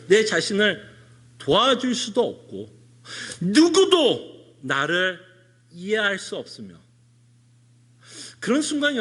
내 자신을 도와줄 수도 없고, 누구도 나를 이해할 수 없으며, 그런 순간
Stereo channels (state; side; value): identical; both; correlation 1.00